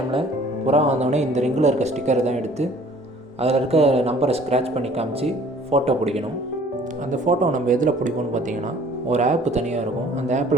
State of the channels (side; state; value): both; normal; correlation 0.53